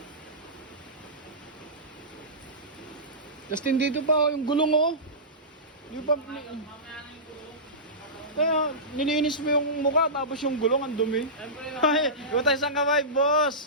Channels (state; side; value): normal; both; correlation -0.19